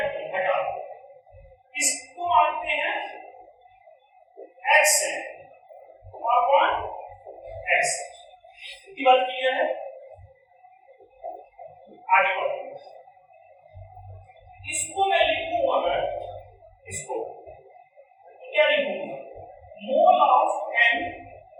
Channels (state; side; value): identical; both; correlation 1.00